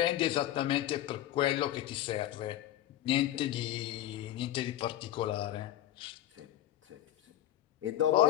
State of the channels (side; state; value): right; quieter; 13.0 dB